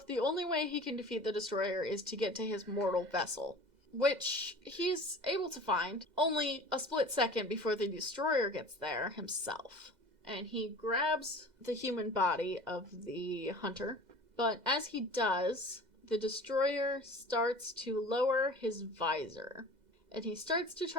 the only way he can defeat the Destroyer is to get to his mortal vessel. Which he's able to find only a split second before the Destroyer gets there himself. And he grabs the human body of the hunter. But as he does, the Destroyer starts to lower his visor. And he starts to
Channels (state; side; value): late; left; 2.0 ms